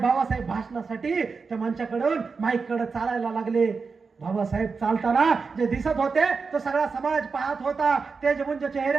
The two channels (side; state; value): left; quieter; 4.9 dB